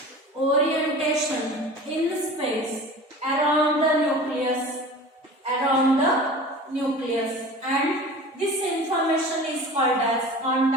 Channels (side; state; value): both; normal; correlation 0.38